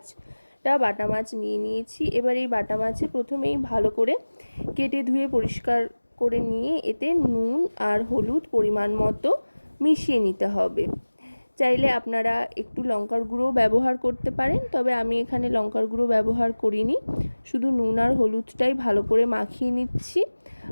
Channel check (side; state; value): both; inverted; correlation -1.00